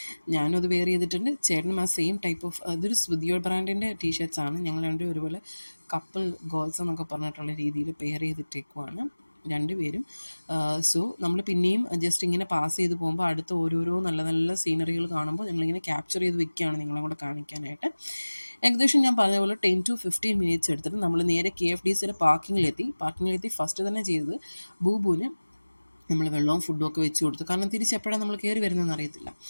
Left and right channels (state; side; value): inverted; both; correlation -1.00